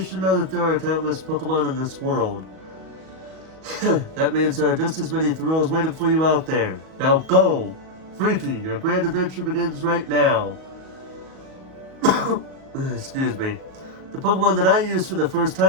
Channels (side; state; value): left; late; 38 ms